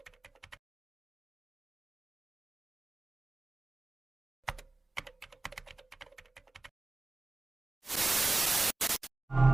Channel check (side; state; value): left; quieter; 3.1 dB